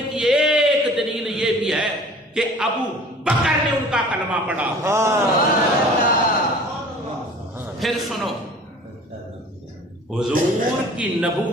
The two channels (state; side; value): normal; both; correlation 0.46